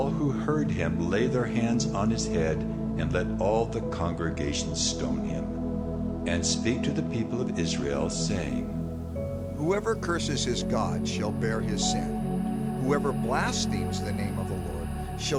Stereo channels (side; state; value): both; identical; correlation 1.00